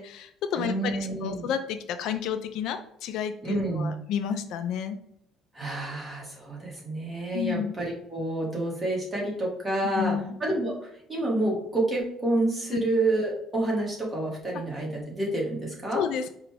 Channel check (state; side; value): normal; both; correlation 0.64